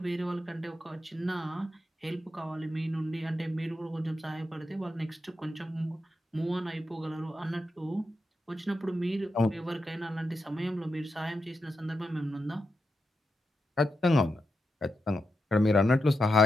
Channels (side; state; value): both; normal; correlation 0.86